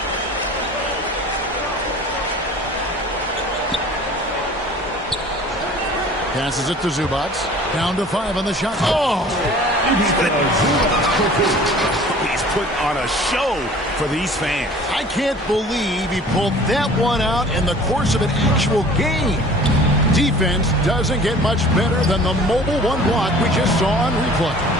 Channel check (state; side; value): normal; both; correlation 0.47